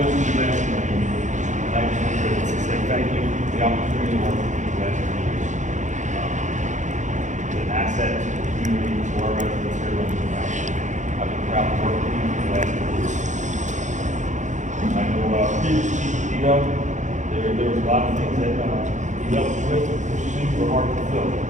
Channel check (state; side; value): late; left; 0.35 ms